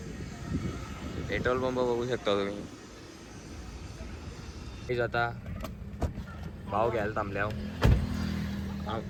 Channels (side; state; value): both; identical; correlation 1.00